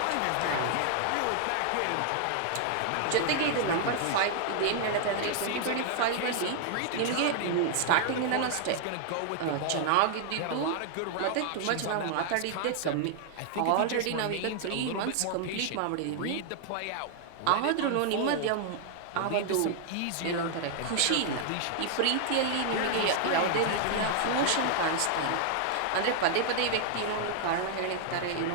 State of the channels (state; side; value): different; both; correlation -0.01